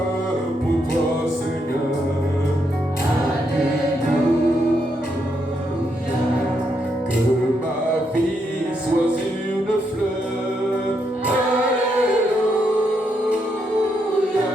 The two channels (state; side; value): normal; both; correlation 0.79